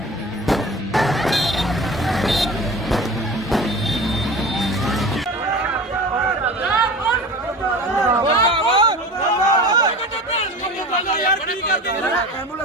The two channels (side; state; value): both; normal; correlation 0.35